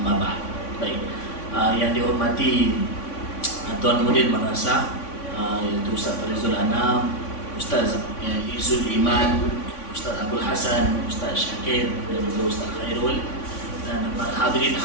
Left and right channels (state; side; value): late; right; 3.5 ms